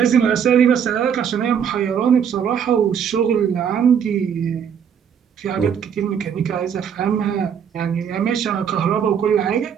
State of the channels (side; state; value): left; quieter; 7.8 dB